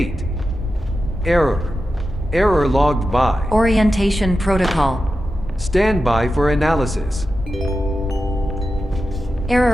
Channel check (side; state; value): both; normal; correlation 0.91